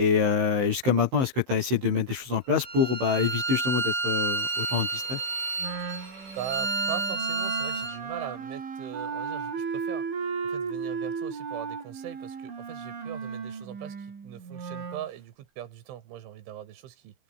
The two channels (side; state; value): left; late; 15 ms